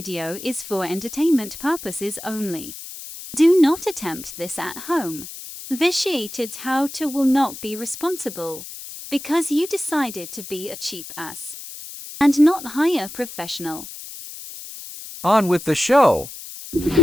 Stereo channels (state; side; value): noise; left; hiss, 12 dB below the sound